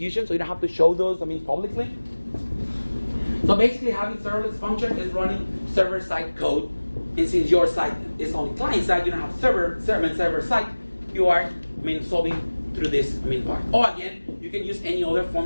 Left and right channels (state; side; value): inverted; both; correlation -1.00